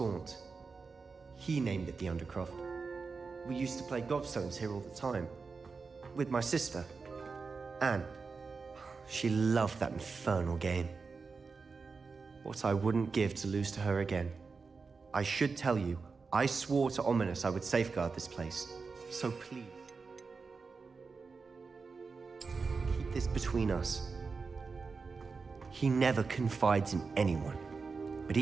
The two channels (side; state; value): left; quieter; 4.7 dB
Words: He named it the Undercroft. We used to play gobstones here all the time. With my sister, Anne. She loved that infernal game. What I wouldn't give to lose to her again. I should tell you, I swore to Ominous I would safeguard this place. So please, keep this between us. He never confides in anyone, but